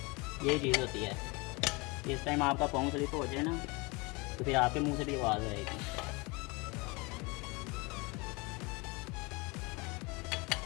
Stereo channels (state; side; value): quieter; right; 26.7 dB